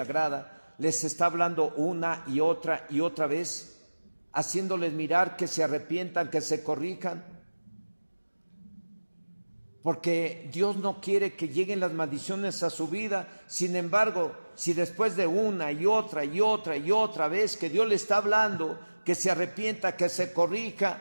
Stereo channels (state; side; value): inverted; both; correlation -1.00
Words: Les está hablando una y otra vez, haciéndoles mirar que se arrepientan, que se corrijan. Porque Dios no quiere que lleguen las maldiciones a su vida. Sin embargo, si después de una y otra vez que Dios le está hablando, que se arrepienta, que se